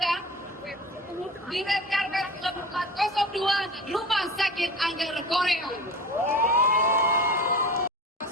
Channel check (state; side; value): normal; both; correlation 0.35